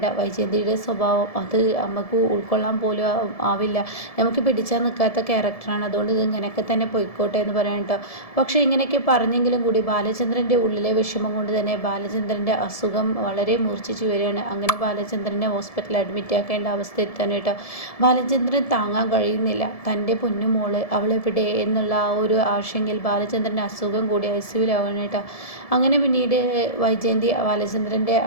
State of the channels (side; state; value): right; late; 1.7 ms